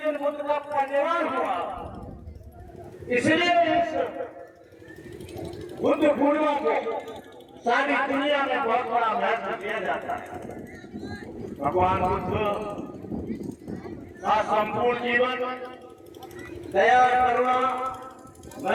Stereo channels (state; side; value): identical; both; correlation 1.00